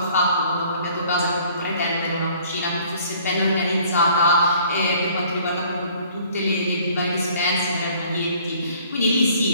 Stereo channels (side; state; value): both; inverted; correlation -0.56